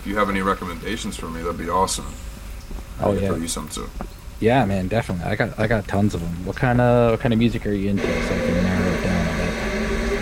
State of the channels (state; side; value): identical; both; correlation 1.00